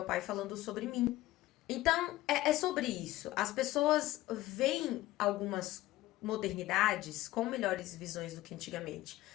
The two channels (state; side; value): quieter; right; 16.5 dB